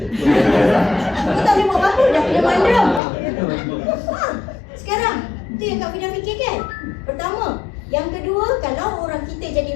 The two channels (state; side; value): drops out; right; at 3.0 s